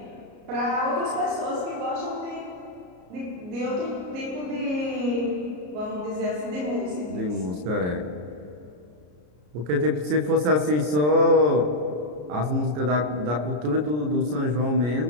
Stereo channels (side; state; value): left; late; 33 ms